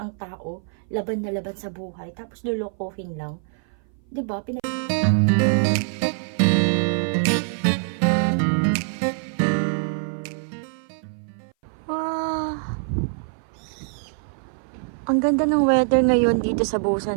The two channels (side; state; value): left; silent; 58 dB below the other